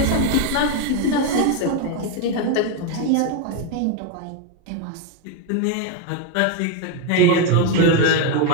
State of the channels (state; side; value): different; both; correlation 0.02